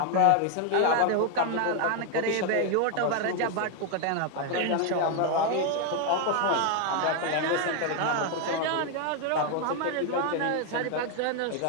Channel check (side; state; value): both; different; correlation 0.01